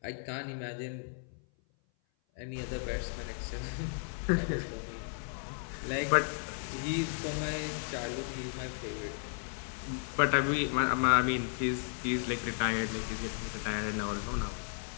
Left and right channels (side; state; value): right; silent; 55 dB below the other